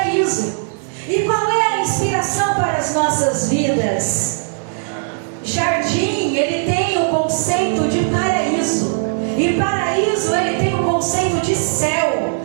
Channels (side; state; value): left; silent; digital silence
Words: E qual é a inspiração para as nossas vidas? Jardim, ele tem o conceito de paraíso, e paraíso, ele tem o conceito de céu.